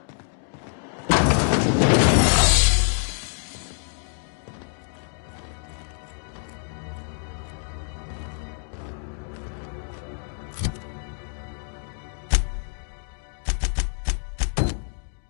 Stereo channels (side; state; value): right; silent; digital silence